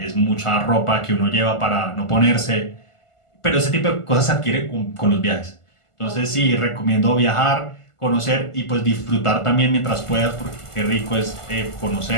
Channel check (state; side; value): late; right; 1.5 ms